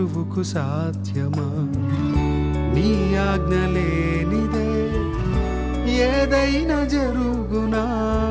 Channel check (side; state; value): both; identical; correlation 1.00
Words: సాధ్యమా? నీ ఆజ్ఞ లేనిదే ఏదైనా జరుగునా,